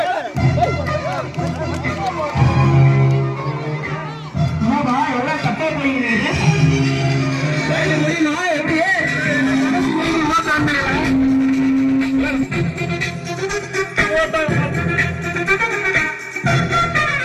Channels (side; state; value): both; identical; correlation 1.00